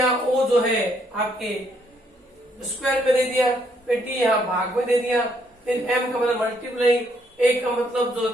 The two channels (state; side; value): normal; both; correlation 0.71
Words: ओ जो है आपके स्क्वायर में दे दिया, फिर टी यहाँ भाग में दे दिया, फिर एम का मतलब मल्टीप्लाई, ए का मतलब जो